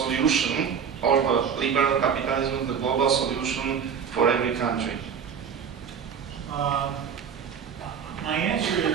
or the liberal capitalism is the global solution for every country? My answer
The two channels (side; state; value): left; quieter; 7.2 dB